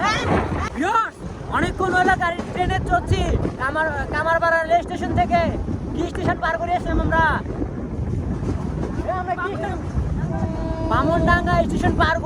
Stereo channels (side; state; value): both; identical; correlation 1.00